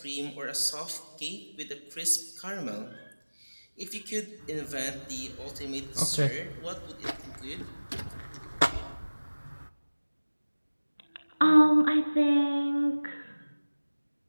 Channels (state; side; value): inverted; both; correlation -1.00